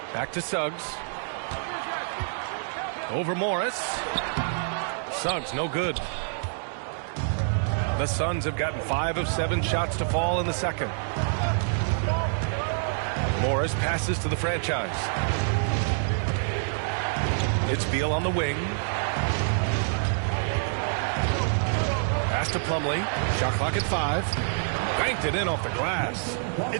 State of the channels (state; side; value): silent; left; digital silence